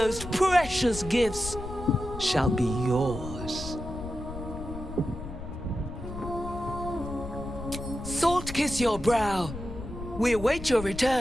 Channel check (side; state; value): left; noise; rumble, 10 dB below the sound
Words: precious gifts shall be yours. Salt kiss your brow. We await your